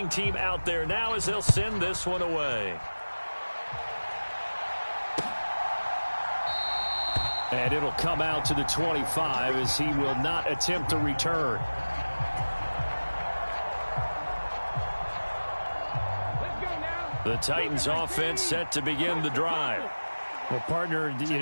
team out there now as they'll send this one away. And it'll come out to the 25 as he will not attempt to return. The Titans offense set to begin the drive. Well, partner,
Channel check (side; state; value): both; inverted; correlation -1.00